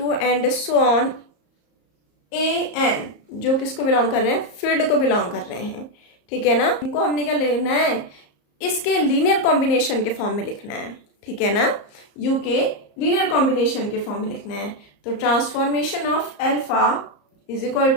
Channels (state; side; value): late; right; 34 ms